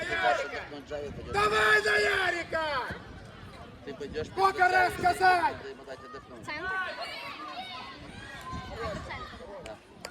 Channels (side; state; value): both; identical; correlation 1.00